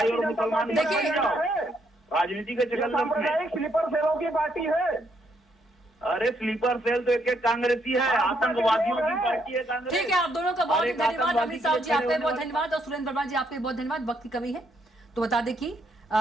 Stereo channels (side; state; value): both; normal; correlation 0.74